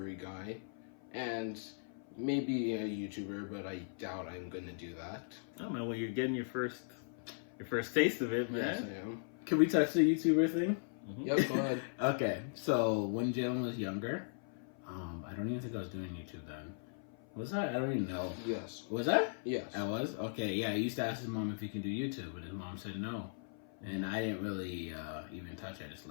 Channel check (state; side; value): silent; right; 52 dB below the other